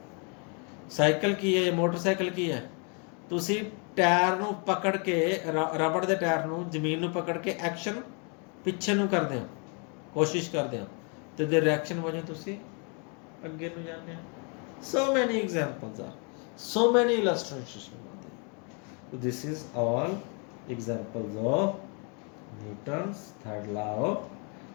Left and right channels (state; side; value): quieter; right; 36.3 dB